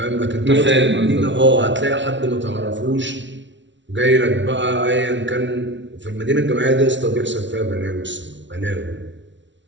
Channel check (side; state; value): left; late; 0.54 ms